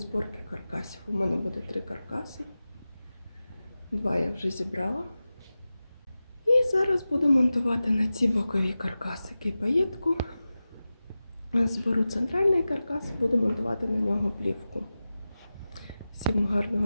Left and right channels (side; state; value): both; inverted; correlation -0.95